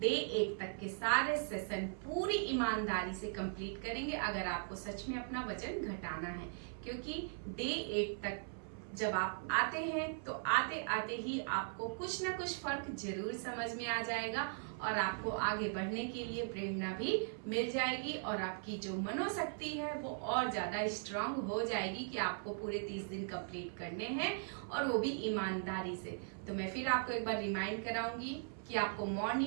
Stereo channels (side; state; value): left; silent; 52 dB below the other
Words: 8 तक के सारे सेशन पूरी ईमानदारी से कंप्लीट करेंगे, अगर आपको सच में अपना वजन घटाना है। क्योंकि डे 8 तक जब आप आते हैं तो आते आते ही आपको कुछ ना कुछ फर्क जरूर समझ में आ जाएगा और आपको आगे बढ़ने के लिए प्रेरणा भी मिल जाएगी और आपकी जो मनोशक्ति है वो और ज्यादा स्ट्रांग हो जाएगी कि आपको पूरे 30 दिन कंप्लीट करने हैं और वो भी ईमानदारी से। तो मैं फिर आपको एक बार रिमाइंड कराऊंगी कि आपको